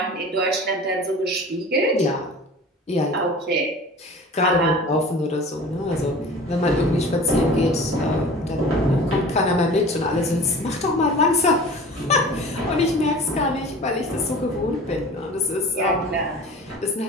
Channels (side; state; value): both; normal; correlation 0.40